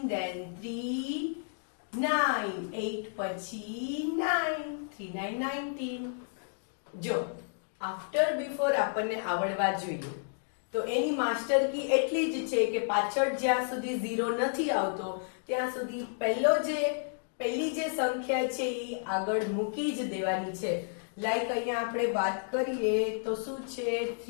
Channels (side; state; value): right; silent; digital silence